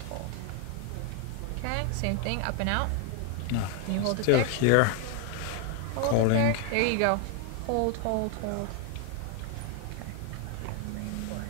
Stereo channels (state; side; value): different; both; correlation 0.00